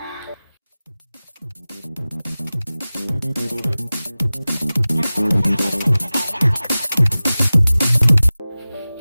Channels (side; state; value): both; inverted; correlation -0.97